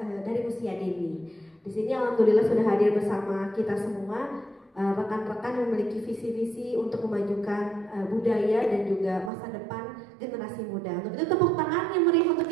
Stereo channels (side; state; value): left; drops out; at 9.3 s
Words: dari usia dini. Di sini alhamdulillah sudah hadir bersama kita semua. Rekan-rekan memiliki visi-visi untuk memajukan budaya dan juga masa depan generasi muda. Untuk itu tepuk tangan yang meriah untuk